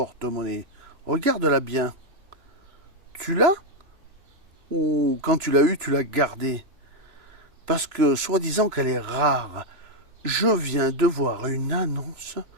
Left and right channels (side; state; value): left; late; 2.9 ms